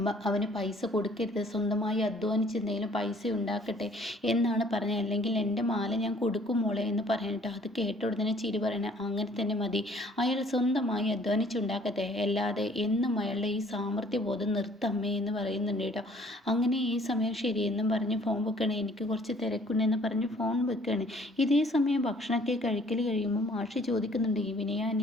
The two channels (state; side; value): normal; both; correlation 0.58